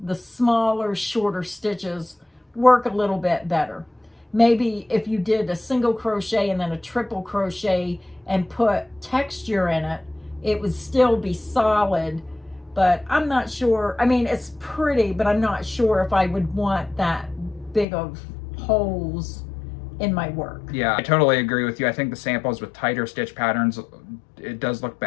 the smaller, shorter stitches work a little bit better. Maybe if you did a single crochet and then a triple crochet and put texture in it, it would still be solid, but I'm not sure. I mean, it's pretty, but I'm not sure if I would want that big of holes in my work. Yeah, I totally agree with you. I think the samples with tighter stitch patterns, it does look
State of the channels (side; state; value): right; drops out; at 17.9 s